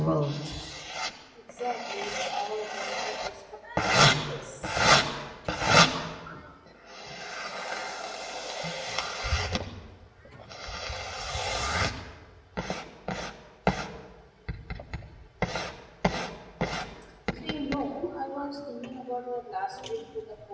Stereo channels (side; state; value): both; identical; correlation 1.00